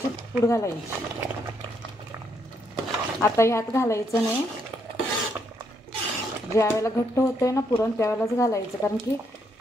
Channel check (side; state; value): both; normal; correlation 0.75